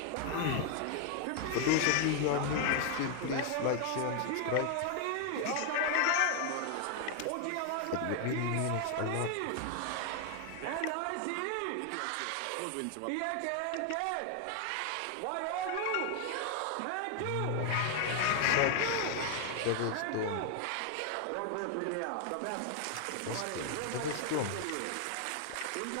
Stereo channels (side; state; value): both; different; correlation 0.00